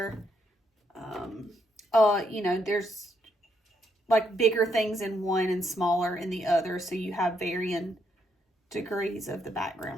you know, there's like bigger things in one and smaller in the other, so you have varying degrees of the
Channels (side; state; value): both; normal; correlation 0.76